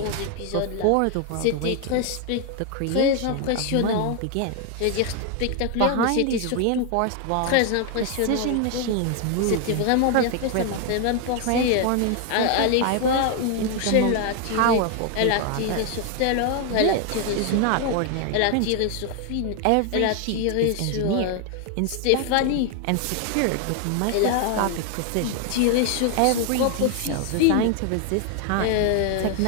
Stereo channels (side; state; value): both; different; correlation 0.00